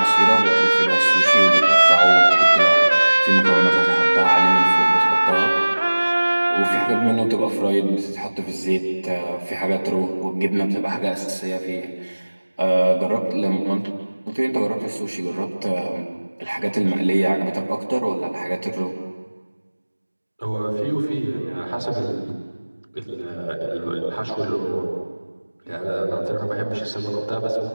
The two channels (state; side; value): inverted; both; correlation -1.00